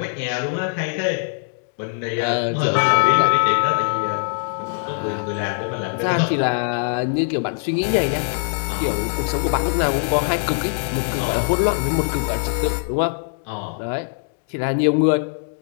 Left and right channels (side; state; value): right; silent; digital silence